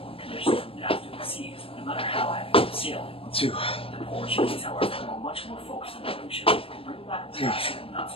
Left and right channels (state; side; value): late; right; 0.27 ms